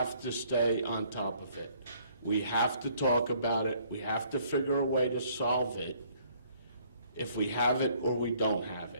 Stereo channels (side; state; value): both; inverted; correlation -0.63